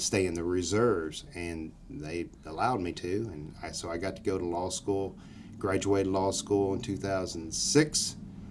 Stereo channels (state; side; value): identical; both; correlation 1.00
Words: stay in the reserves? And they allowed me to, and so I got to go to law school, graduated law school in 2006.